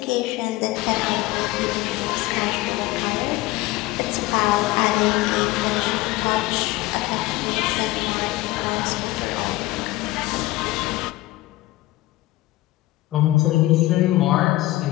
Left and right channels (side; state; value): right; quieter; 18.2 dB